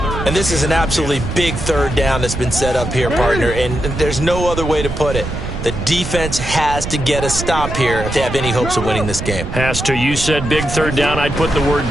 And this is an absolutely big third down that's been set up here, partner, and there's no other way to put it. The defense has to get a stop here if they have any hopes of winning this game. Has to. You said big third down. I'd put the word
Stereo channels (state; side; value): noise; right; rumble, 6 dB below the sound